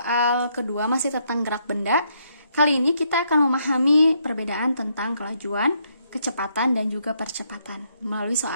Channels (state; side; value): inverted; both; correlation -0.74